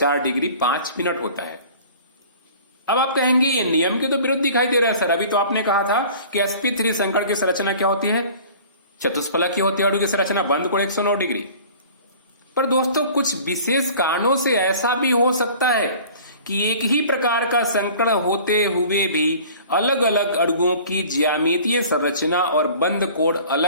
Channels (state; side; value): inverted; both; correlation -0.46